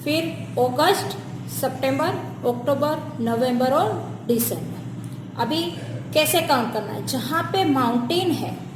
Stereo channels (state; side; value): identical; both; correlation 1.00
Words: फिर अगस्त, सितंबर, अक्टूबर, नवंबर और दिसंबर. अभी कैसे काउंट करना है? जहाँ पे माउंटेन है